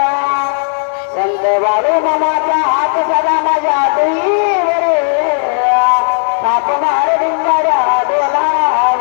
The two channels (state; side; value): silent; right; digital silence